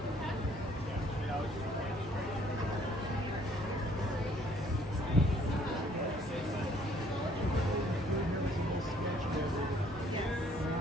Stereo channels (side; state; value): both; normal; correlation 0.62